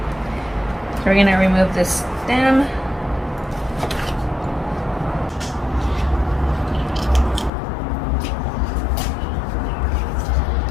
so we're gonna remove this stem.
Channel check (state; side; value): drops out; right; at 7.5 s